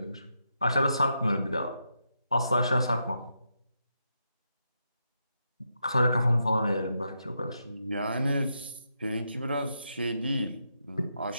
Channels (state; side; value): inverted; both; correlation -0.83